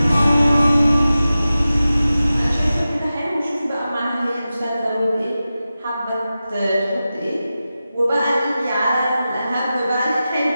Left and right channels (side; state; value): both; inverted; correlation -0.94